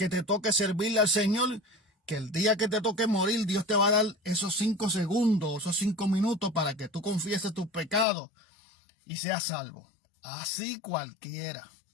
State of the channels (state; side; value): drops out; right; at 8.1 s